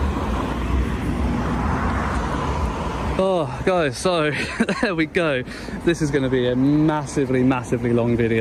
Oh guys, so there we go. This is going to be a massively long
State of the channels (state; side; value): identical; both; correlation 1.00